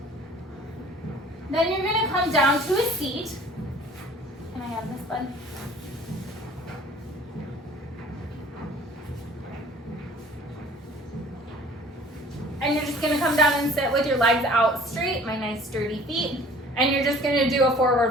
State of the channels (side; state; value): both; normal; correlation 0.50